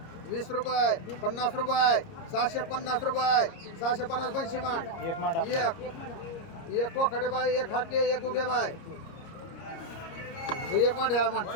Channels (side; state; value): right; late; 30 ms